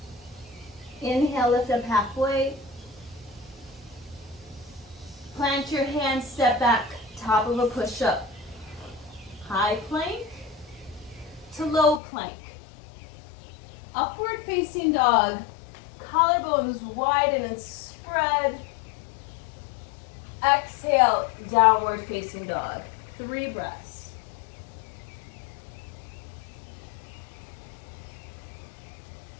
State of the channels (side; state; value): right; drops out; at 12.0 s